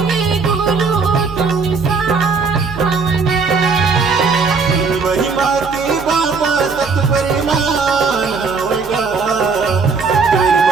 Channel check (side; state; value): left; quieter; 4.8 dB